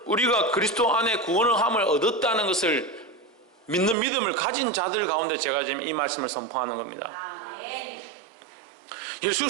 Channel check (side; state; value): left; drops out; at 4.0 s